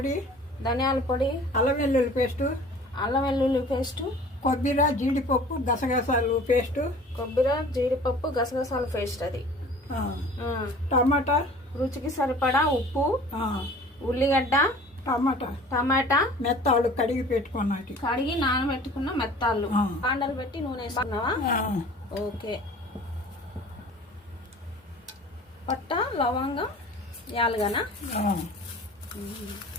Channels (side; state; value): both; normal; correlation 0.45